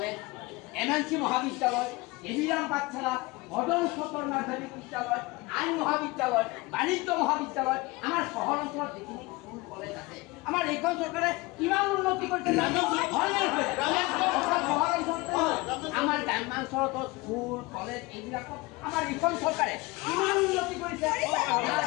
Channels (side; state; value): right; quieter; 23.2 dB